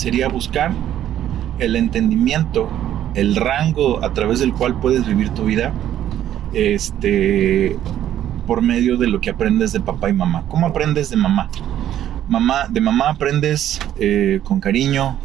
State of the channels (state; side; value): quieter; left; 11.5 dB